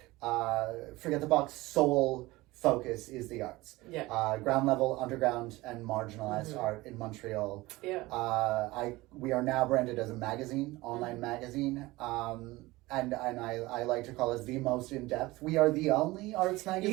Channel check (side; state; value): left; quieter; 20.2 dB